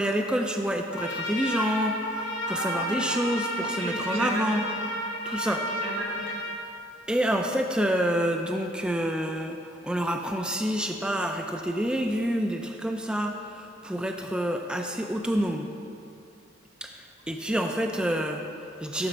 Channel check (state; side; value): normal; both; correlation 0.67